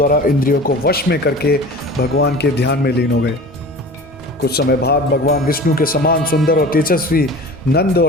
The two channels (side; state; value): both; normal; correlation 0.38